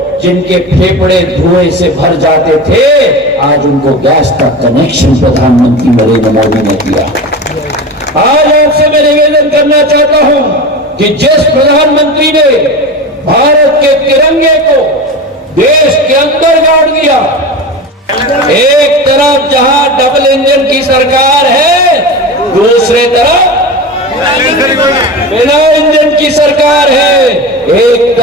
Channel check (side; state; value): both; normal; correlation 0.27